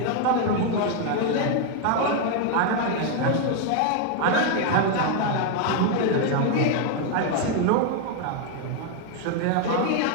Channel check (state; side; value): different; both; correlation 0.01